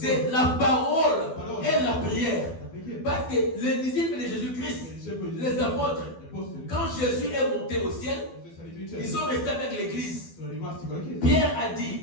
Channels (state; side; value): late; right; 12 ms